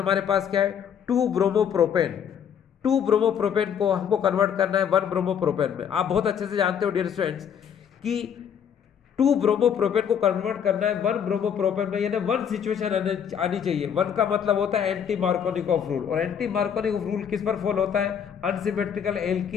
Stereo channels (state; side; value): quieter; right; 8.1 dB